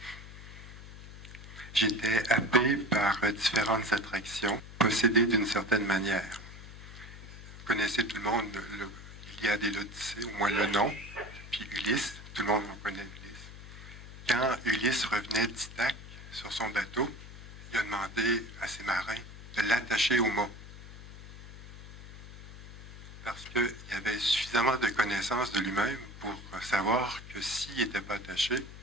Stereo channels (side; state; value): left; noise; hum, 14 dB below the sound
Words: J'étais happé par différentes attractions, possédées d'une certaine manière. Vous connaissez tout le monde l'Iliade et l'Odyssée, au moins le nom, puis Ulysse, tout le monde en connaît Ulysse. Quand Ulysse revenait d'Ithaque sur son bateau, il a demandé à ses marins de l'attacher au mât. Parce qu'il avait suffisamment de connaissances de lui-même pour savoir que s'il n'était pas attaché,